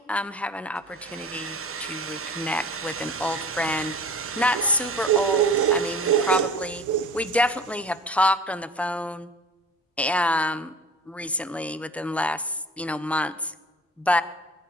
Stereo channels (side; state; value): both; normal; correlation 0.41